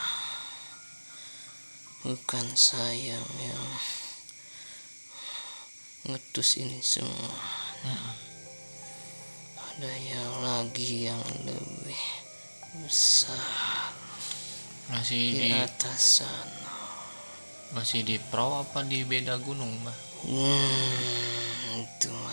bukan saya yang ngutus ini semua. Ada yang lagi yang lebih besar Masih di di atas sana. masih di Pro apa di beda gunung, Mbak? Itu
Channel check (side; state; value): both; inverted; correlation -1.00